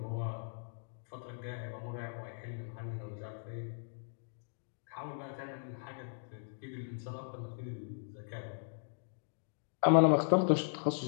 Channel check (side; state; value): right; silent; digital silence